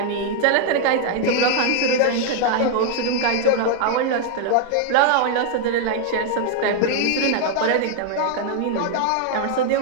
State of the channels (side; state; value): both; different; correlation 0.00